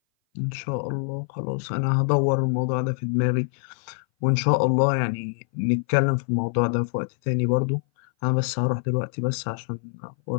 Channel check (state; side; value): silent; right; 58 dB below the other